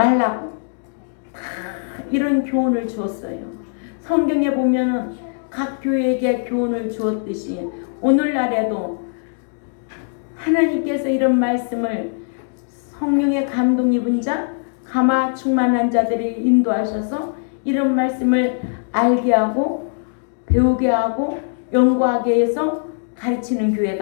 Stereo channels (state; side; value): silent; right; digital silence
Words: 다 이런 교훈을 주었어요. 성경에 보면은 각 교회에게 교훈을 주었듯이 오늘날에도 하나님께서 이런 말씀을 성령의 감동 입은 자, 감화 충만한 자들이 인도하셔서 이런 말씀을 알게 하고 배우게 하고 연구하게 해서 가르치는